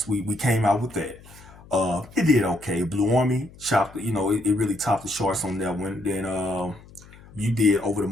We came out with that. It did okay. Blue Army chopped. You know, it really topped the charts on that one. Then you did Over the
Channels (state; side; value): noise; left; hum, 22 dB below the sound